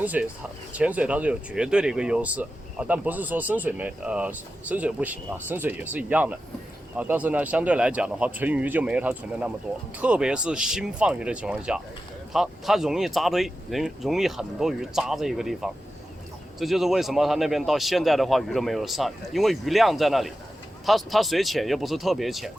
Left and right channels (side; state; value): both; normal; correlation 0.92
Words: 水它是有绝对的一个优势但不是说深水不行啊，深水也是一样的但是呢，相对来讲的话，存鱼就没有它存的那么多，特别是新放鱼的情况下，它容易扎堆，容易很多鱼扎在一个地方。这就是为什么它那边到现在的话鱼都没有上，因为鱼量在那里，它水浅又不是特别浅，